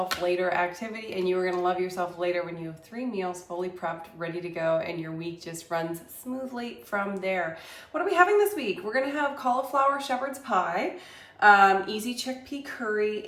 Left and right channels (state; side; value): identical; both; correlation 1.00